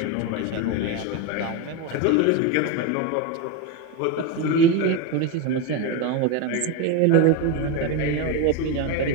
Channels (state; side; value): different; both; correlation 0.04